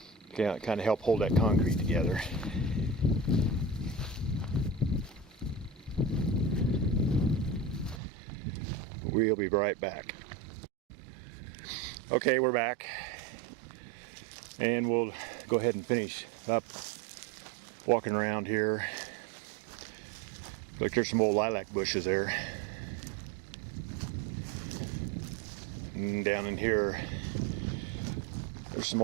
Yeah, kind of help hold that concrete together. We'll be right back. Okay, we're back. And we'll go ahead and finish up walking around here. Look, there's some old lilac bushes there. And down in here, there's some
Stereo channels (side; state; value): left; drops out; at 8.0 s